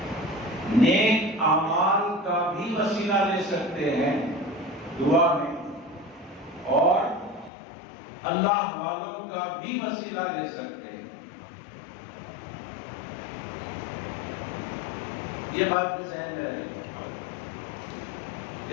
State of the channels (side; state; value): right; drops out; at 7.5 s